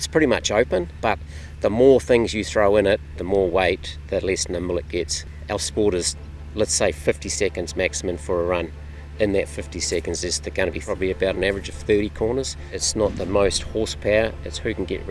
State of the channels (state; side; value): identical; both; correlation 1.00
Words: pretty much open, but the more things you throw in it, the more weight, the less nimble it gets. Our sport is, let's say, 50 seconds maximum for a run. In that 50 seconds, there's going to be probably about an average of 30 corners. It's not the most horsepower, it's who can get